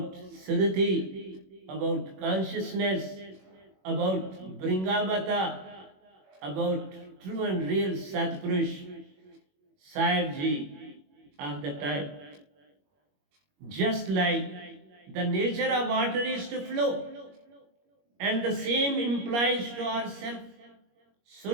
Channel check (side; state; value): left; late; 21 ms